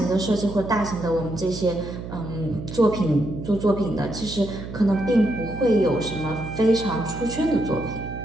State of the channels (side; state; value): right; noise; hum, 10 dB below the sound